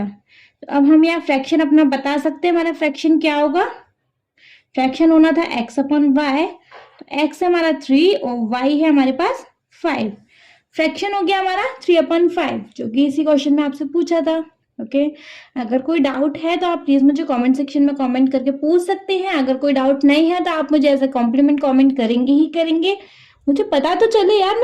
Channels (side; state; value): both; identical; correlation 1.00